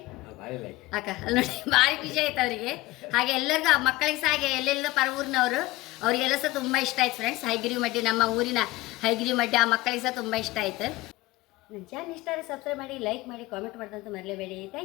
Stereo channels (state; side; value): quieter; right; 19.4 dB